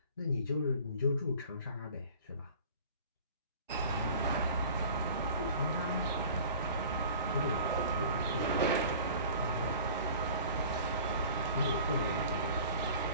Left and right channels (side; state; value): both; inverted; correlation -0.44